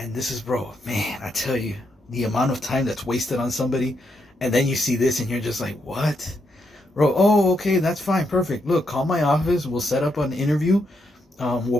this is, bro, man, I tell you, the amount of time that's wasted on somebody, and then you see this and you're just like, what? Bro, oh, okay, that's fine, perfect. Look, call my office, we'll set up an interview.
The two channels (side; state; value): both; normal; correlation 0.80